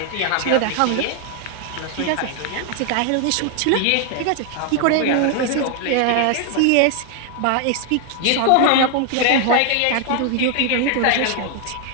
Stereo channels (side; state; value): both; different; correlation 0.00